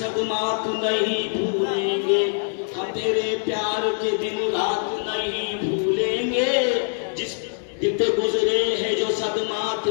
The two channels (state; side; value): silent; right; 63 dB below the other